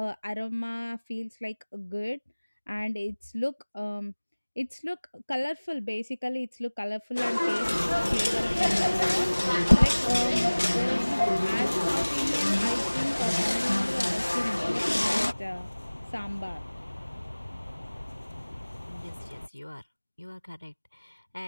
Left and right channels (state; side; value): inverted; both; correlation -1.00